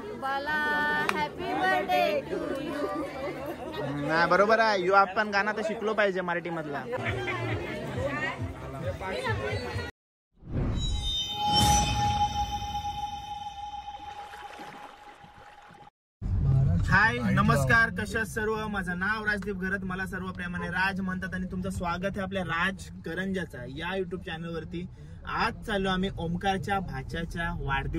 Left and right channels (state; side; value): identical; both; correlation 1.00